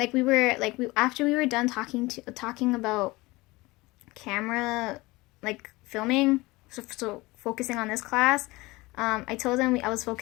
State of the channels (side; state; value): right; quieter; 21.8 dB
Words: after we were done talking about camera, like filming, so focusing on this class. I told him I was